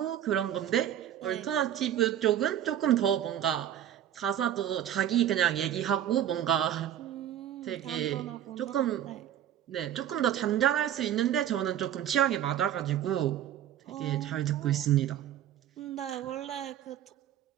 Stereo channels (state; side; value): quieter; left; 10.9 dB